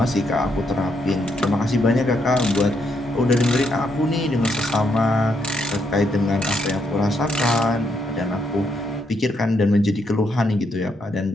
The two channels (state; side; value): normal; both; correlation 0.77